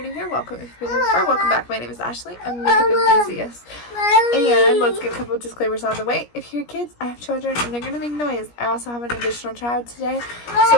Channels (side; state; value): right; late; 17 ms